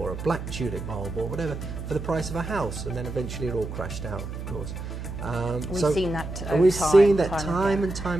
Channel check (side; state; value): right; noise; hum, 7 dB below the sound